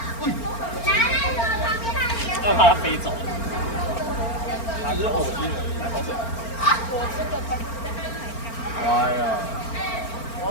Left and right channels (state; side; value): late; right; 4.4 ms